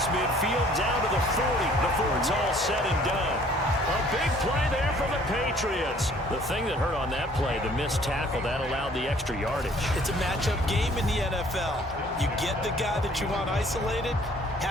midfield down to the 40 before it's all said and done. A big play there for the Patriots. The thing that hurt on that play, the missed tackle, that allowed the extra yardage. It's a matchup game in the NFL. You get the guy that you want isolated,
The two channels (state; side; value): normal; both; correlation 0.57